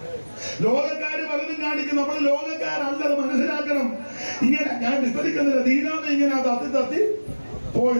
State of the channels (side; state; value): both; inverted; correlation -1.00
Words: ലോകക്കാര് പലതും കാണിക്കും. നമ്മൾ ലോകക്കാരല്ലത് മനസ്സിലാക്കണം. ഇങ്ങനെ ഞാൻ വിസ്തരിക്കുന്നില്ല. ദീനാമ ഇങ്ങനെ തത്തി